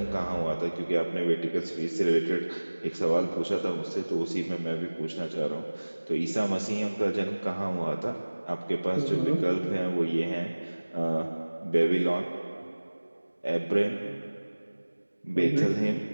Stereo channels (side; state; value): both; inverted; correlation -1.00